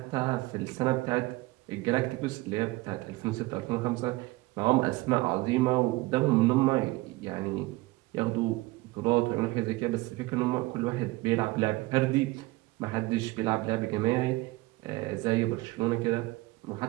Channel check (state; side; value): quieter; left; 21.1 dB